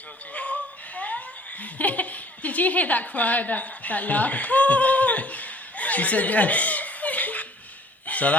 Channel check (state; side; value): normal; both; correlation 0.54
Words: Did you hear that cry, that laugh? She said yes. So